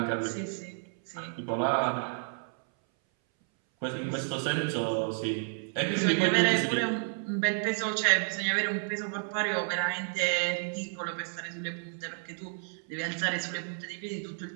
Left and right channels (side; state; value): left; silent; 57 dB below the other